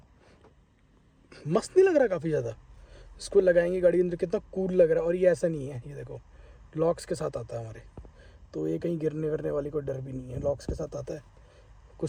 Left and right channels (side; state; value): both; identical; correlation 1.00